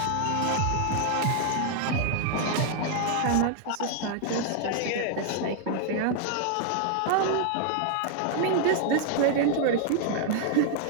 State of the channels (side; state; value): both; different; correlation 0.00